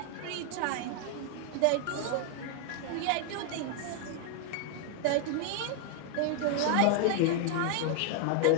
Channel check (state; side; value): different; both; correlation 0.00